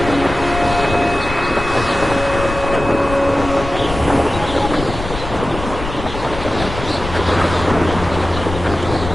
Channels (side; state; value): left; noise; rumble, 8 dB below the sound